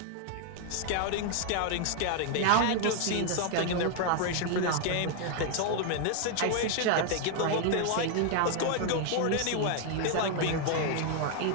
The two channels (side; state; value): both; different; correlation 0.00